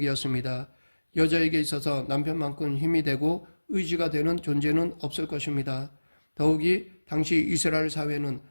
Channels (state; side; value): inverted; both; correlation -1.00